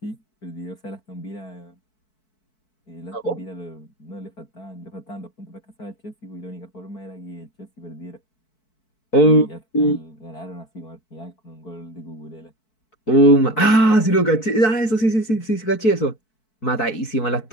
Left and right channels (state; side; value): late; right; 4.6 ms